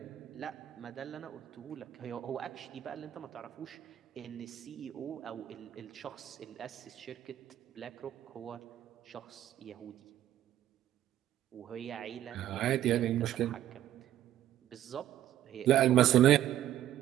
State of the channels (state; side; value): quieter; left; 12.3 dB